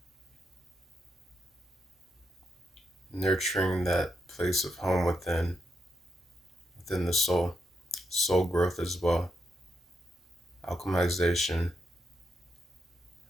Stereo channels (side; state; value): both; normal; correlation 0.82